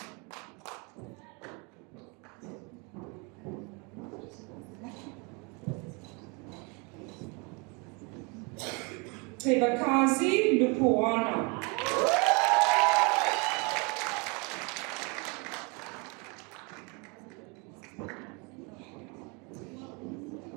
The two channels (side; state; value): left; quieter; 31.3 dB